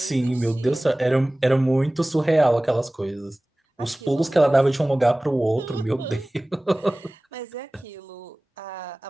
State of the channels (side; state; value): both; normal; correlation 0.98